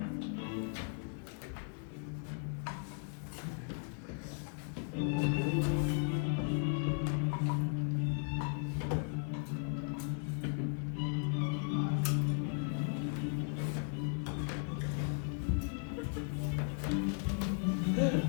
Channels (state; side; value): silent; right; 53 dB below the other